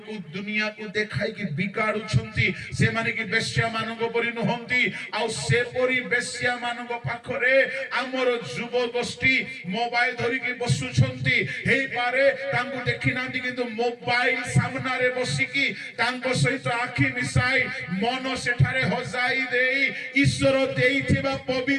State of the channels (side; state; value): both; identical; correlation 1.00